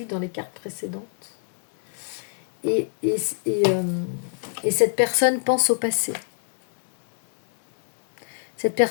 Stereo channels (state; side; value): silent; right; 63 dB below the other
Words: dans les cartes précédentes, et cette personne pense au passé. Cette